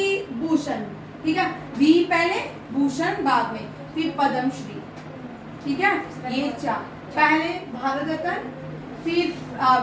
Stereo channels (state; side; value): identical; both; correlation 1.00